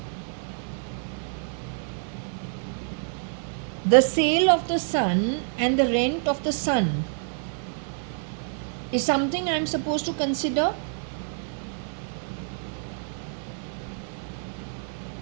The sale of the sun and the rent of the sun is something I'm supposed to consider.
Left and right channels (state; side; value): silent; left; 60 dB below the other